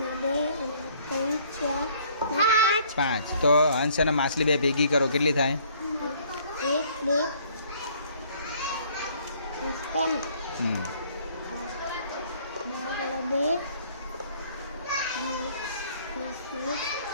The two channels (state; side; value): inverted; both; correlation -0.60